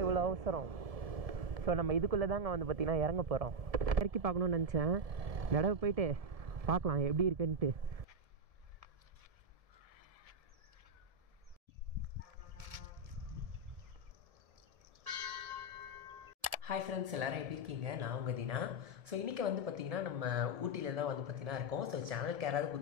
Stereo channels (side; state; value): left; late; 1.7 ms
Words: இவ்வளோ அவசரம். ஸோ நம்ம இதுக்குள்ளே தாங்க வந்து பார்த்திங்கன்னா இறங்க போகிறோம். இறக்கி பார்க்கணுன்னு நினச்சேன், தடவை போயிட்டு பார்க்கலாம் எப்படி இருக்குன்ட்டு. ஹாய் ஃப்ரெண்ட்ஸ், எல்லோரும் எப்படி இருக்கீங்க? நான் உங்கள் தீனா. ஸோ இன்றைக்கி வந்து பார்த்திங்கன்னா நம்ம ஊட்டியில் தான் வந்து பார்த்திங்கன்னா இருக்கோம். ஸோ சேனலுக்கு யாராவது